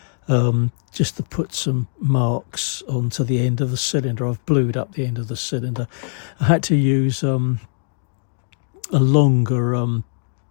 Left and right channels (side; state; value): right; silent; digital silence